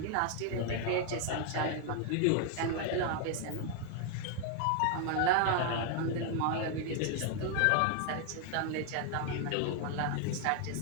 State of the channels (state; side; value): different; both; correlation 0.00